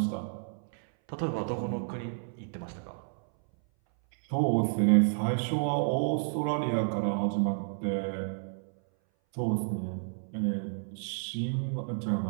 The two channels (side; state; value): left; silent; 57 dB below the other